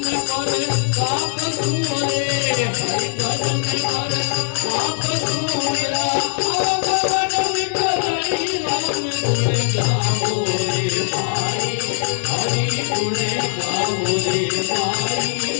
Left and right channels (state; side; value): silent; right; 66 dB below the other